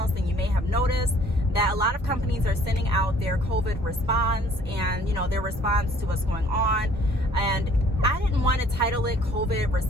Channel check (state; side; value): normal; both; correlation 0.56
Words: then you may have noticed that a lot of companies are sending out their COVID response and, you know, their response to what's going on. And I didn't want to title it COVID